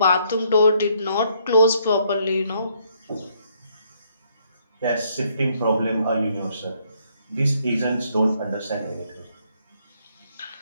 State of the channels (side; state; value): both; inverted; correlation -0.69